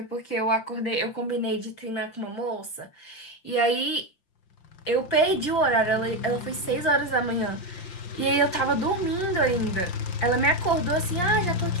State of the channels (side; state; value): right; late; 5.7 ms